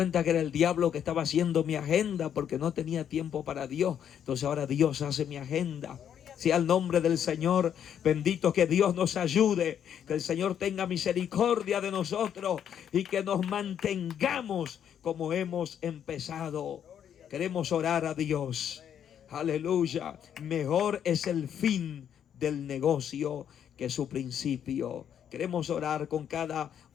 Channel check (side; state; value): right; quieter; 9.1 dB